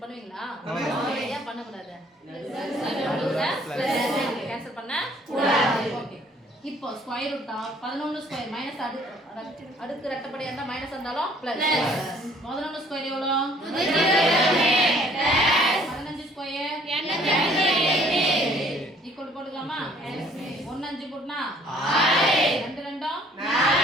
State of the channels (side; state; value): both; normal; correlation 0.58